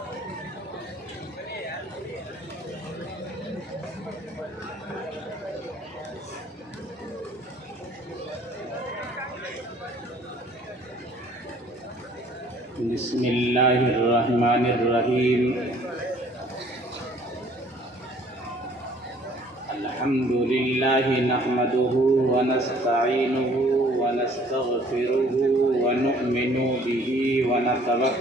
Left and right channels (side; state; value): both; normal; correlation 0.56